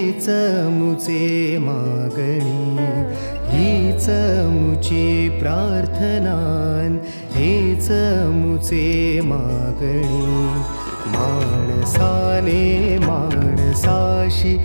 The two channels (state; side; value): inverted; both; correlation -1.00